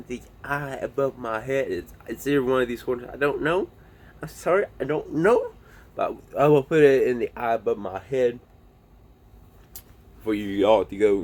the eye above my head. It's either one of these corners. I don't know. I'm sorry, I don't know. But I will put it in the eye above my head for you all to go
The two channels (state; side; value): identical; both; correlation 1.00